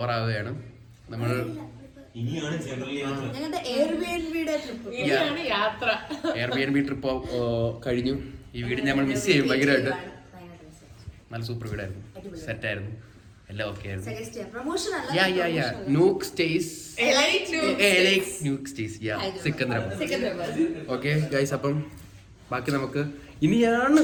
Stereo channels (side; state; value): both; identical; correlation 1.00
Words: ആവുകയാണ്. നമ്മൾ എയർബിഎൻബി ട്രിപ്പ് കഴിഞ്ഞു. ഈ വീടിന് നമ്മൾ മിസ് ചെയ്യും ഭയങ്കരമായിട്ട്. നല്ല സൂപ്പർ വീടായിരുന്നു, സെറ്റായിരുന്നു, എല്ലാം ഓക്കെ ആയിരുന്നു. Nook stays Secunderabad. Okay guys, അപ്പം ബാക്കി നമുക്ക് ഇനിയാണ്